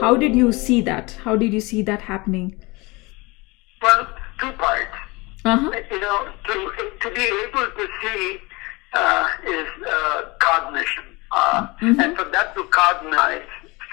did you see that? How did you see that happening? Well, two parts. Uh-huh. To be able to see is cognition. And for that to cognize,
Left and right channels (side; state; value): right; quieter; 24.7 dB